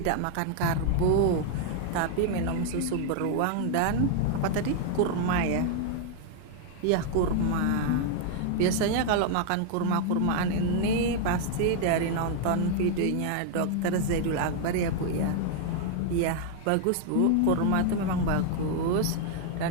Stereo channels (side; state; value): both; different; correlation 0.00